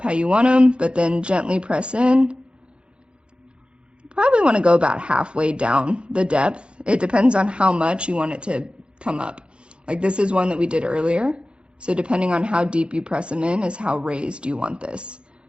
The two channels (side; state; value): left; late; 0.056 ms